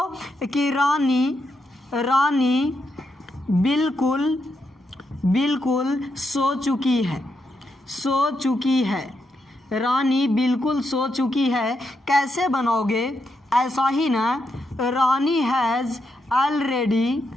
कि रानी बिल्कुल सो चुकी है। रानी बिल्कुल सो चुकी है। कैसे बनाओगे? ऐसा ही ना, रानी हैज़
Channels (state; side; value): normal; both; correlation 0.82